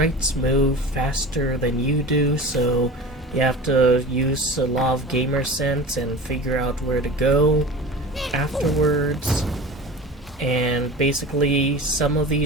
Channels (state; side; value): normal; both; correlation 0.35